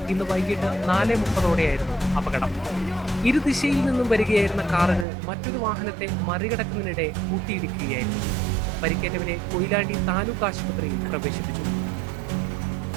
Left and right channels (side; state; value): left; drops out; at 5.1 s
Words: ഇന്ന് വൈകിട്ട് 4:30ഓടെയായിരുന്നു അപകടം. ഇരുദിശയിൽ നിന്നും വരികയായിരുന്ന കാറുകൾ മറ്റൊരു വാഹനത്തെ മറികടക്കുന്നതിനിടെ കൂട്ടിയിടിക്കുകയായിരുന്നു. പരിക്കേറ്റവരെ കൊയിലാണ്ടി താലൂക്ക് ആശുപത്രിയിൽ പ്രവേശിപ്പിച്ചു.